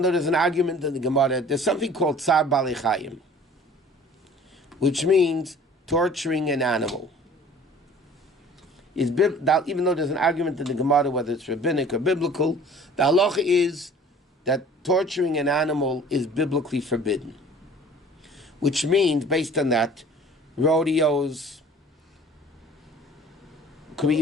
though there's an argument in the Gemara, there's something called tsar bali chayim, which means torturing an animal. Even though there's an argument in the Gemara whether it's rabbinic or biblical, the halacha is that torturing an animal is biblically forbidden. Which means, based on that, rodeos, could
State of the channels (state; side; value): normal; both; correlation 0.48